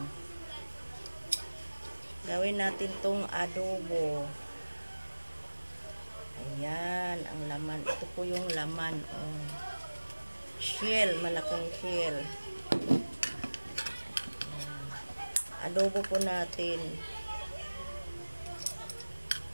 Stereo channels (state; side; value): inverted; both; correlation -1.00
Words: Gawin natin tong adobo. Ayan, ang laman. Ito po yung laman. Oh. Shell, malaking shell. Ayan. Adobo po natin.